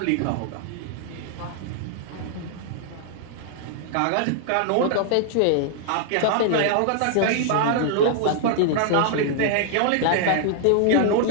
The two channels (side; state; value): both; different; correlation 0.00